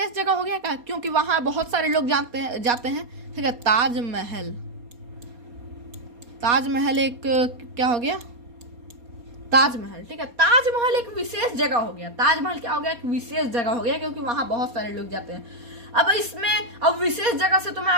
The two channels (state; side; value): late; left; 4.2 ms